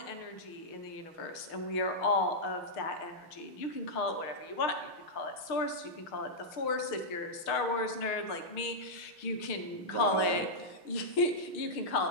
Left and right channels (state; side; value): late; right; 6.5 ms